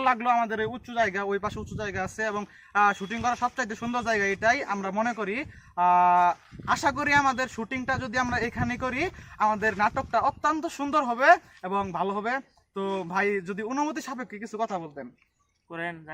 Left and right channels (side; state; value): both; identical; correlation 1.00